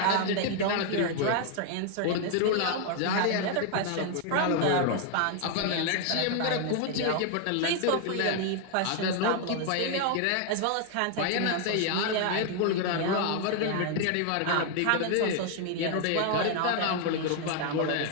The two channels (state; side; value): different; both; correlation 0.00